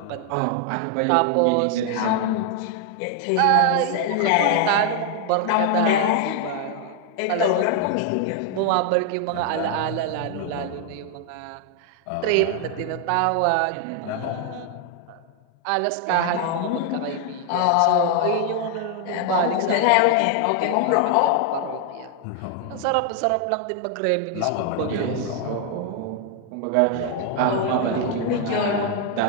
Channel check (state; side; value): different; both; correlation 0.00